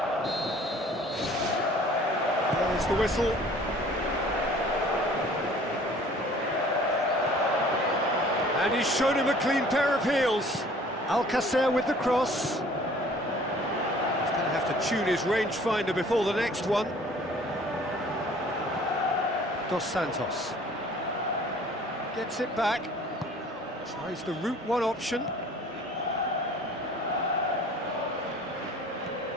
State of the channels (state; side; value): normal; both; correlation 0.51